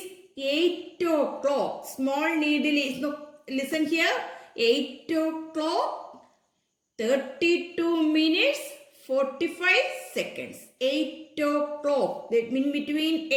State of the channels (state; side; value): identical; both; correlation 1.00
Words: 8 o'clock. Small needle is, no, listen here, 8 o'clock, 32 minutes, 45 seconds. 8 o'clock. That means between